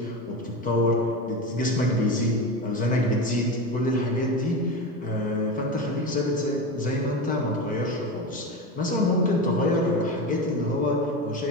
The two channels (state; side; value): normal; both; correlation 0.23